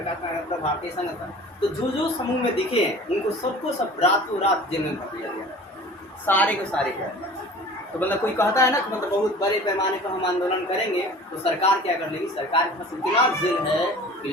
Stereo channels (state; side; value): normal; both; correlation 0.43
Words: नारायण का भारतीय संघ था, तो जो समूह में दिखे हैं उनको सबको सब रातों रात जेल में भर दिया गया, सारे को सारे को। तो मतलब कोई कहता है ना कि मतलब बहुत बड़े पैमाने पर हम आंदोलन करेंगे तो सरकार क्या कर लेगी, सरकार के पास इतना जेल है कि